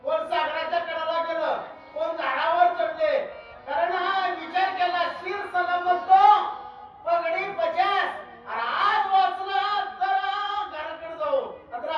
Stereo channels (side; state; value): both; identical; correlation 1.00